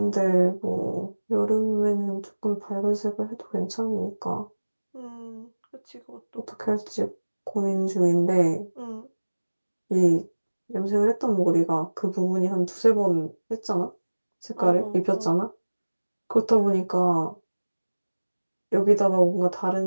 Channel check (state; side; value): inverted; both; correlation -1.00